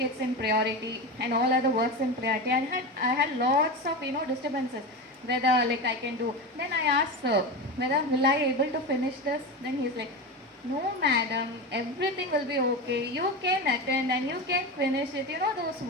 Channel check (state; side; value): normal; both; correlation 0.22